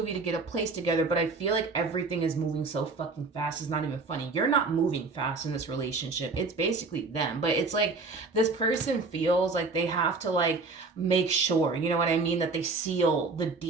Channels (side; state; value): left; quieter; 3.9 dB